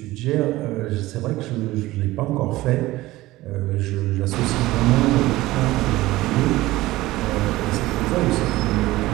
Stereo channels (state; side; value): quieter; left; 17.9 dB